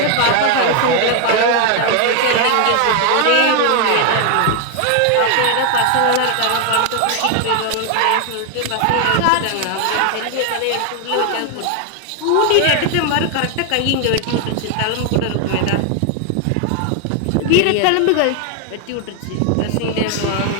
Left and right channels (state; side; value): different; both; correlation 0.00